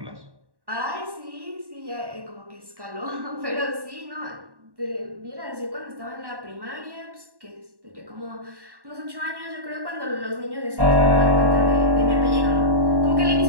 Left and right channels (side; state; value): left; late; 1.1 ms